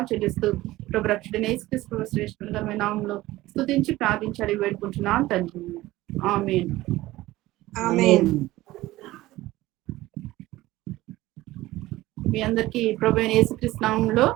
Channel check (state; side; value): quieter; left; 17.4 dB